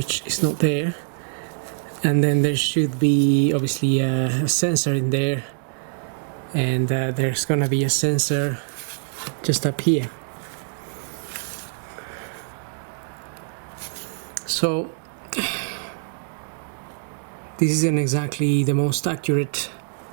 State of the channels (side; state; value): left; silent; digital silence